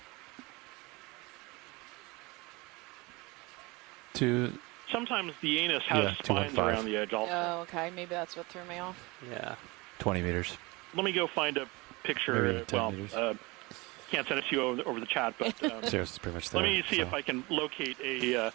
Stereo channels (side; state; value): left; quieter; 24.4 dB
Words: Sometimes the anus has spines 215. around the edge also. Oh, okay. Maybe that's what threw me off. Yeah. 20 meters. Let me go find a picture. Maybe 10 meters. Can't send it to you over the chat, but It's pretty much let there, me see so. if I can locate a